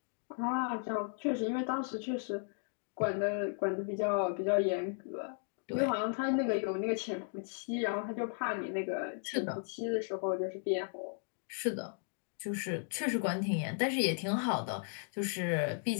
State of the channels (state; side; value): silent; right; 54 dB below the other